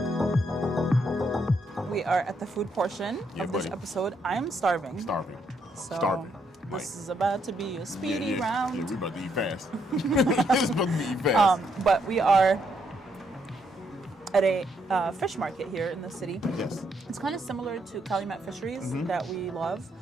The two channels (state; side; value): normal; both; correlation 0.75